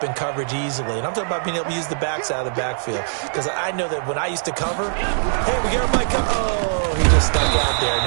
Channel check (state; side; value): silent; left; 64 dB below the other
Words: in coverage easily. And I'm talking about being able to use the backs out of the backfield. Because I know that when I used to cover, hey, we got my oh, he just stuck out there, and